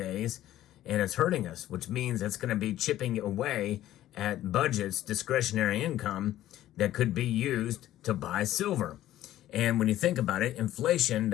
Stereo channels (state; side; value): quieter; right; 13.6 dB